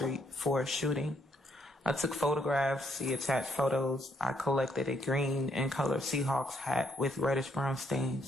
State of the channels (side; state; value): both; normal; correlation 0.72